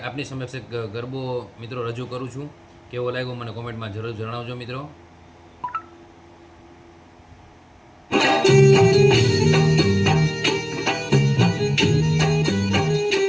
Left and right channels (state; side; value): identical; both; correlation 1.00